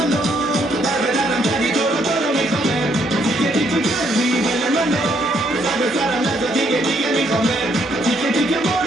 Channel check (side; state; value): both; normal; correlation 0.71